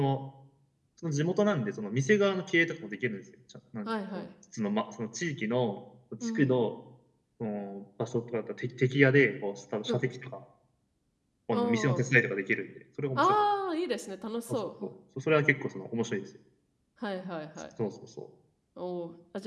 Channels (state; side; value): identical; both; correlation 1.00